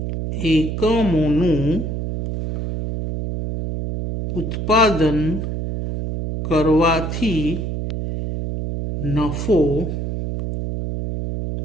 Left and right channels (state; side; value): noise; right; hum, 3 dB below the sound